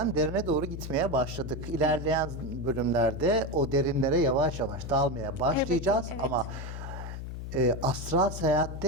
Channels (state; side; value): noise; left; hum, 8 dB below the sound